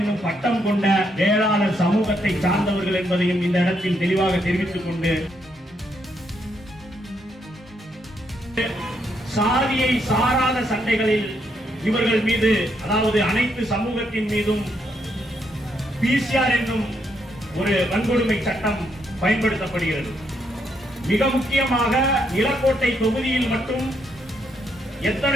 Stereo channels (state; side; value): normal; both; correlation 0.76